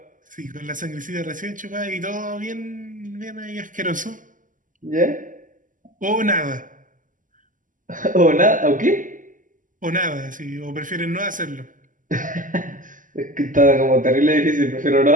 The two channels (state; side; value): late; left; 0.38 ms